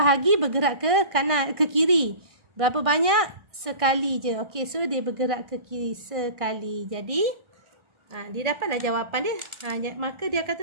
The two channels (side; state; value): left; late; 1.5 ms